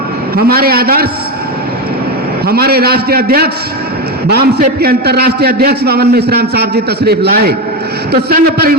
हमारे आदर्श, हमारे राष्ट्रीय अध्यक्ष बामसेप के अंतर्राष्ट्रीय अध्यक्ष वामन मेश्राम साहब जी तशरीफ लाए तो संघ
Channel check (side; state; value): both; normal; correlation 0.14